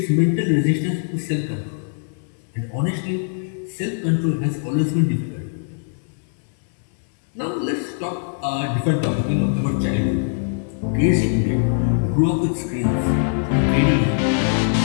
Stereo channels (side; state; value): right; silent; 64 dB below the other